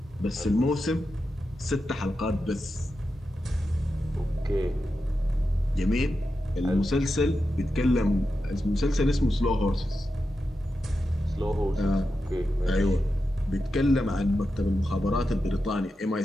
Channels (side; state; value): both; normal; correlation 0.89